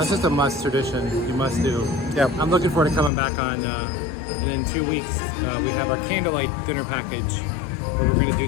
just a must tradition. You must do. Yep. I'm looking forward to coming back on. And in 2 weeks, we have our candlelight dinner package, where we're going to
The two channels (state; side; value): drops out; right; at 3.1 s